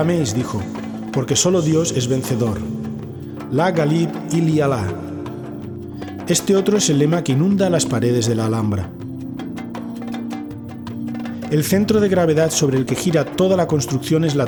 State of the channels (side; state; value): both; identical; correlation 1.00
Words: dijo, porque solo Dios es vencedor. La Ghalib ili Allah. Este otro es el lema que inunda las paredes de la Alhambra. El centro de gravedad sobre el que gira toda la construcción es la